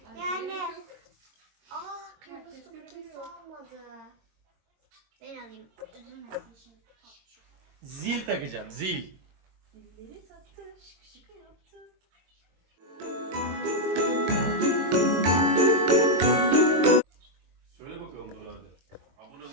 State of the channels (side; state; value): left; late; 22 ms